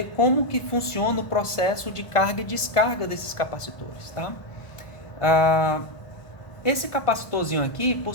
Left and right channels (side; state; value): right; late; 1.4 ms